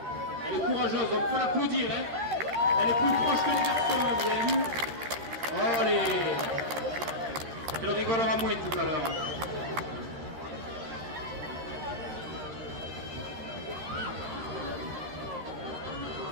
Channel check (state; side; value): late; left; 13 ms